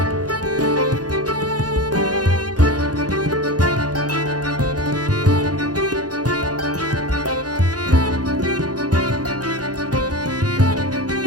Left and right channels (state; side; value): late; left; 0.68 ms